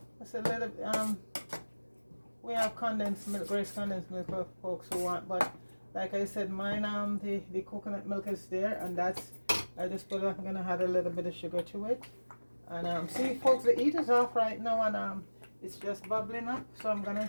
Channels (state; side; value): inverted; both; correlation -1.00